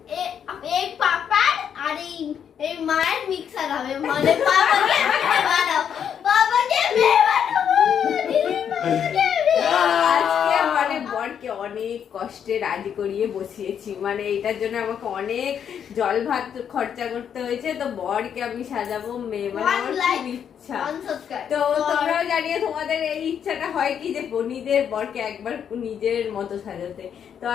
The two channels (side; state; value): right; quieter; 8.3 dB